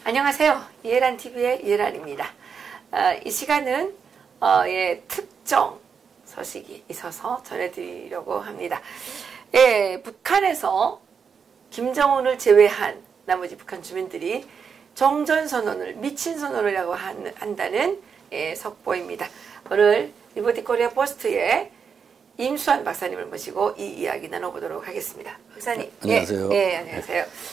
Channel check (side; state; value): left; quieter; 6.4 dB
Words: 안녕하세요. 이해란 TV의 이해란입니다. 이 시간은 특정 소식이 있어서 전해드리려고 합니다. 북한에서 김정은을 제외한 나머지 북한 주민들이 정전선언을 미친 선언이라고 한다는 속보입니다. 오늘 리버티 코리아 포스트에 임수환 박사님을 모시고 이 이야기 나눠보도록 하겠습니다. 박사님. 안녕하세요. 안녕하세요.